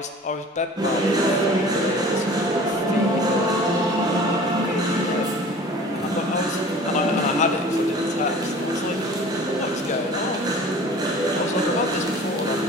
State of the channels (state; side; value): normal; both; correlation 0.44